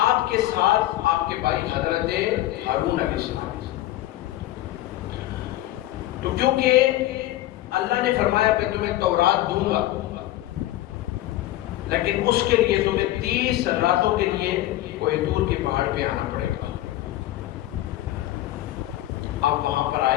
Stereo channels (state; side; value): quieter; right; 15.4 dB